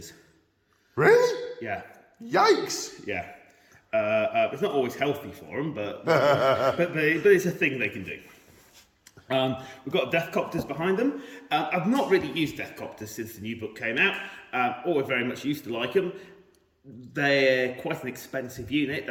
Really? Yeah. Yikes! Yeah. It's not always healthy for them, but it's a thing they can do. We've got Deathcopters behind them. I've not really used Deathcopters since the new book came out. Always very much used to like them. They're quite an expensive unit.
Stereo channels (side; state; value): both; identical; correlation 1.00